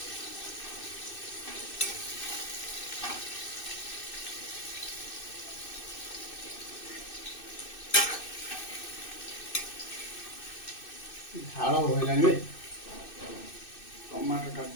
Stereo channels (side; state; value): right; late; 2.6 ms